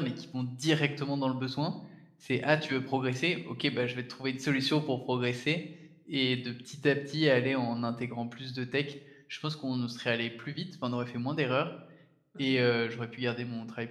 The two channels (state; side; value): identical; both; correlation 1.00